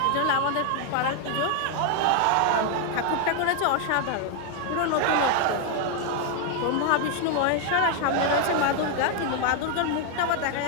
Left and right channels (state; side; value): different; both; correlation 0.00